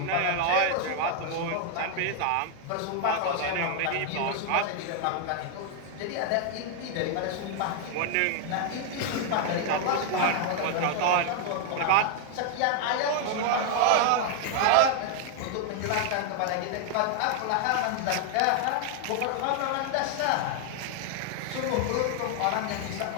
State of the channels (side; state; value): both; different; correlation 0.00